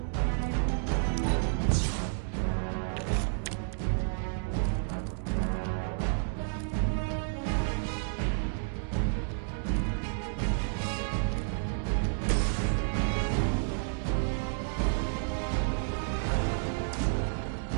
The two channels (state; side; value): silent; left; digital silence